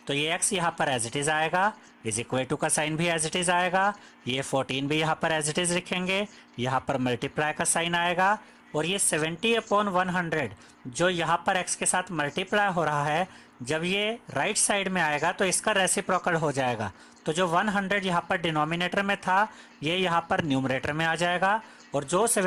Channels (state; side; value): identical; both; correlation 1.00